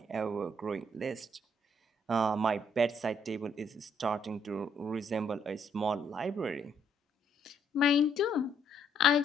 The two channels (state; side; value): normal; both; correlation 0.69